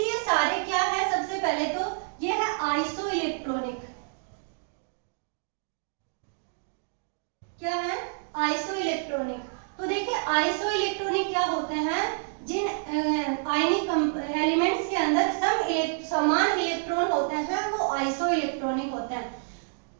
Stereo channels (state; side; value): silent; left; digital silence